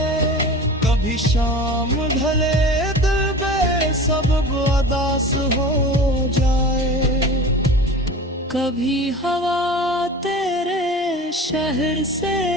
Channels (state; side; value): normal; both; correlation 0.36